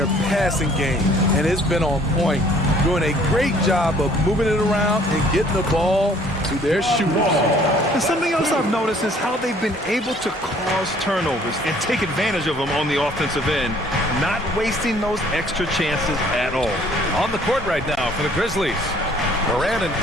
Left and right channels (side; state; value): both; normal; correlation 0.58